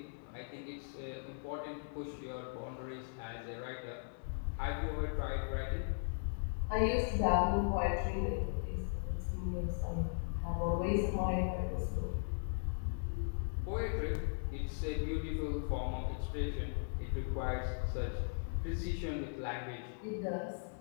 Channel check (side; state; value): right; silent; digital silence